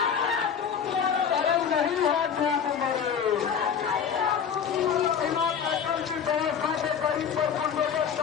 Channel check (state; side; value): quieter; right; 7.4 dB